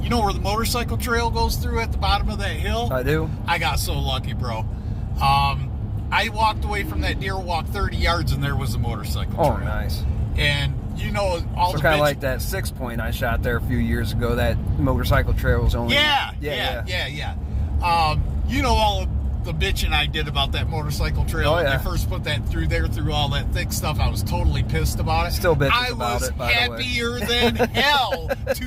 you know where the motorcycle trail goes through at the bottom of that hill? I do. I got so lucky, bro. I walked away from that deer walk 30 yards, and there was a motorcycle trail. Oh, nice. And you know, all So the kind of bitch- like that 6-point I shot there a few years ago. That motorcycle trail was only Yeah. You know all of the bitching I did about that motorcycle trail Oh, when yeah. they first put that through there, through all that thick stuff. I was totally pissed about it. Still bitches I about was it, by the way. happier than hell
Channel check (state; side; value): identical; both; correlation 1.00